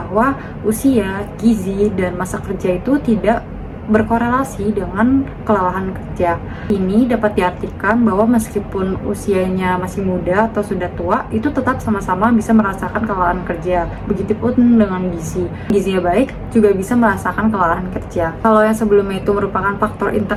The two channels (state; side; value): identical; both; correlation 1.00